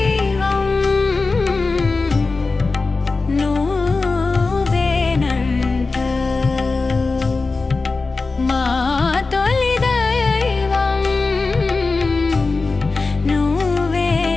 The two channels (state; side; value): quieter; right; 3.8 dB